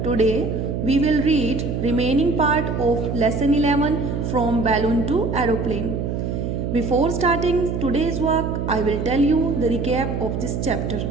Today we will read remaining part of lesson 11 from balloon to aeroplane. Before starting today's work, I will tell you the recap of this chapter.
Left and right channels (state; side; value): noise; right; hum, 2 dB below the sound